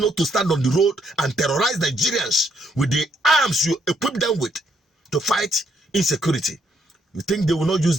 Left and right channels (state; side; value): normal; both; correlation 0.72